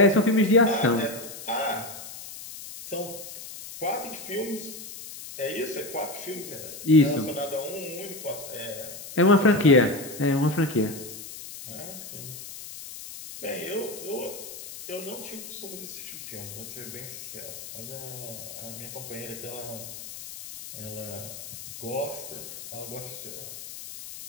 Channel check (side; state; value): left; noise; hiss, 12 dB below the sound